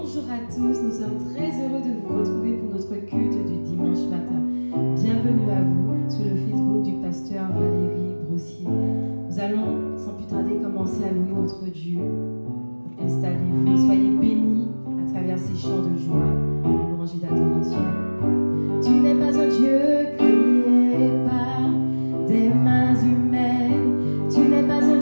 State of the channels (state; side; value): inverted; both; correlation -1.00